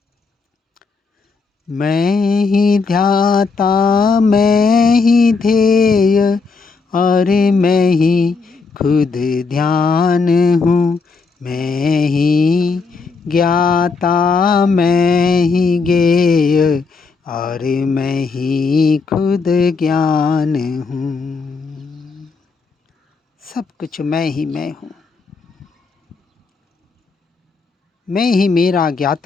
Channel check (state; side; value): quieter; right; 4.5 dB